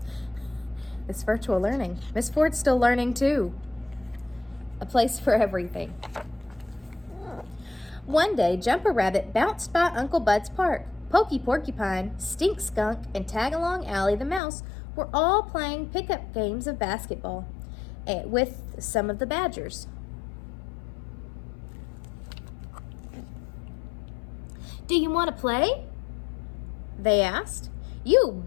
It's virtual learning. Miss Ford's still learning too. A place for everything. One day, Jumper Rabbit bounced by Uncle Bud's park. Pokey Porcupine, Stink Skunk, and Tagalong Allie the Mouse were all playing pickup games of basketball with some of the Badgers. "Do you want to play?" they asked. "You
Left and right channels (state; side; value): drops out; right; at 14.4 s